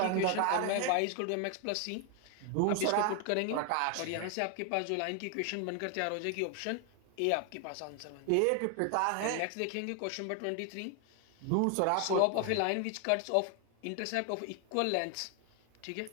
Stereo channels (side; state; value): both; different; correlation 0.01